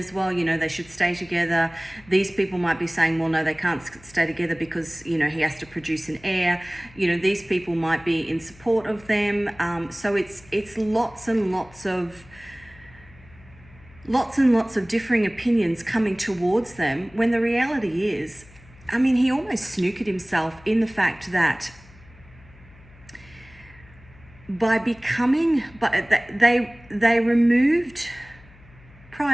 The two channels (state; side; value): noise; left; hum, 24 dB below the sound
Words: Well, you know, they should stay together. These people might be saying, well, no, they can't stay together because, you know, he has to produce an heir. You know, these people might be in support of them. So it's lots and lots of differing opinions coming towards them, when the reality is, I mean, he almost snookered himself in the fact that they removed,